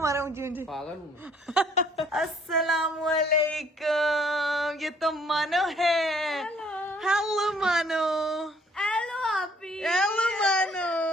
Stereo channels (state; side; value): normal; both; correlation 0.61